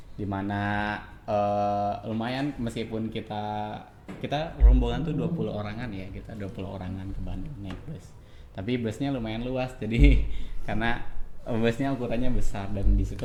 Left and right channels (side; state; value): both; identical; correlation 1.00